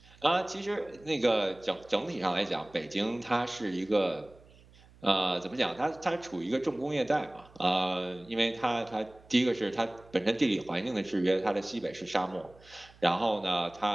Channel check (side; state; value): right; noise; hum, 25 dB below the sound